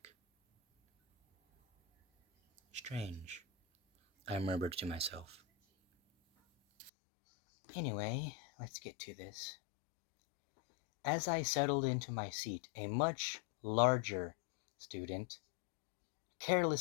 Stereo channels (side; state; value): right; drops out; at 6.9 s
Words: Strange, I murmured to myself. Anyway, let's get to this. As I settled into my seat, a much larger student